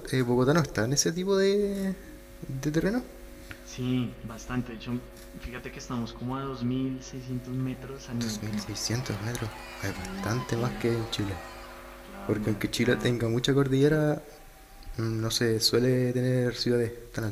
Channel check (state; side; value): identical; both; correlation 1.00